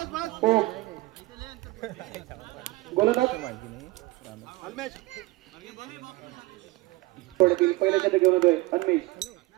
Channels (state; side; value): quieter; left; 21.3 dB